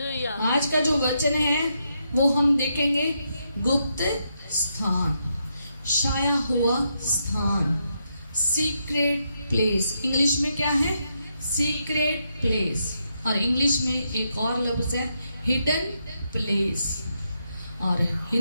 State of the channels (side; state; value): both; inverted; correlation -0.81